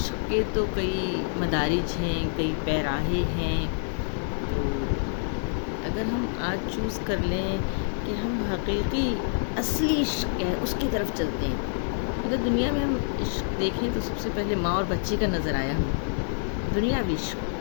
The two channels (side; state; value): right; silent; 60 dB below the other